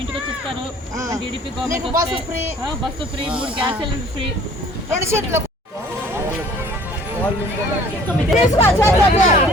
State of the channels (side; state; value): both; normal; correlation 0.52